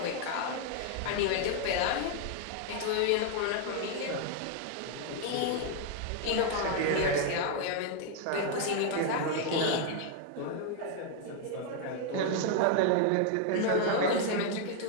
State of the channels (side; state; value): both; different; correlation 0.01